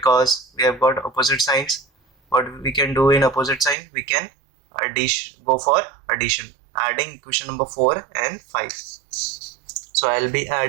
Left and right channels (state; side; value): drops out; left; at 3.8 s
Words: we have got opposite signs. What we can do in opposite sign, we can go for addition, adding equation number 4 and 5. So I'll be